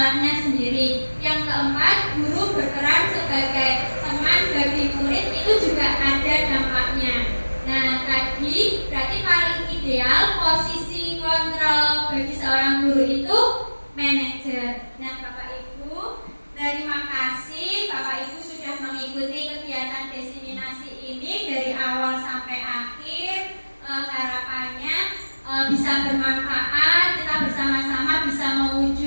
sendiri. Yang keempat, guru berperan sebagai teman bagi murid, itu juga ada dampaknya. Nah, tadi berarti paling ideal posisi kontrol bagi seorang guru itu manajer. Nah, Bapak Ibu, terima kasih Bapak Ibu sudah mengikuti kegiatan diseminasi ini dari awal sampai akhir. Harapannya bisa bermanfaat, kita bersama-sama bisa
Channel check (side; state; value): both; inverted; correlation -1.00